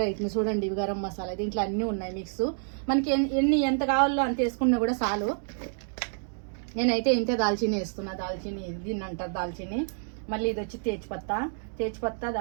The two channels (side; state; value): left; silent; digital silence